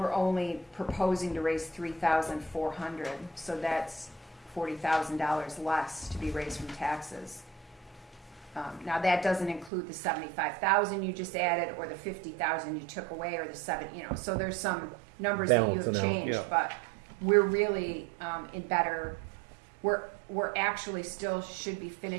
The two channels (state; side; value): drops out; left; at 9.7 s